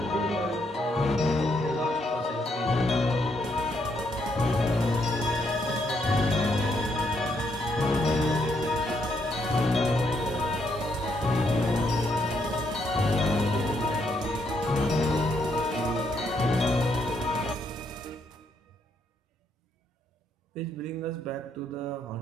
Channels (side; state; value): both; normal; correlation 0.75